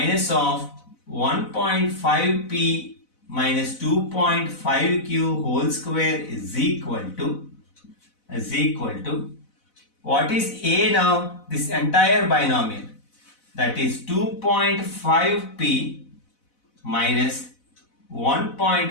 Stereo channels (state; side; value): late; right; 4.0 ms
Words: of 1.5p minus 2.5q whole square is equal to what is A now? This entire binomial, that is 2.5p minus